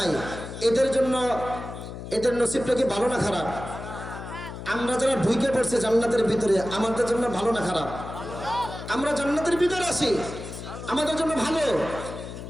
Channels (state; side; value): noise; left; hum, 10 dB below the sound